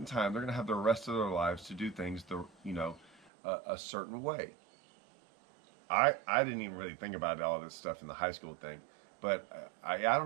time they're going to have the rest of their lives to do things a certain way. I didn't even really think about all this stuff in the high school thing, but I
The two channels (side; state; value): left; drops out; at 3.3 s